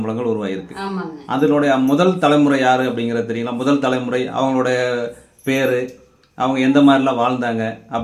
உருவாயிருக்கு. அதனுடைய முதல் தலைமுறை யாரு அப்படிங்கிறது தெரியுங்களா? முதல் தலைமுறை அவங்களுடைய பேரு, அவங்க எந்த மாதிரிலாம் வாழ்ந்தாங்க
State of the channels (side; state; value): both; identical; correlation 1.00